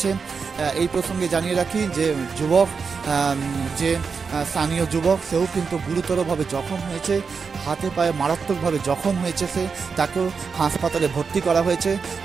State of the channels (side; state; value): left; quieter; 5.4 dB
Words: এই প্রসঙ্গে জানিয়ে রাখি যে যে স্থানীয় যুবক, সেও কিন্তু গুরুতরভাবে জখম হয়েছে, হাতে পায়ে মারাত্মকভাবে জখম হয়েছে তাকেও হাসপাতালে ভর্তি করা হয়েছে।